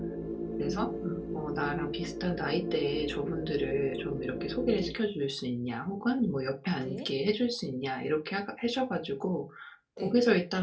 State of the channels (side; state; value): both; identical; correlation 1.00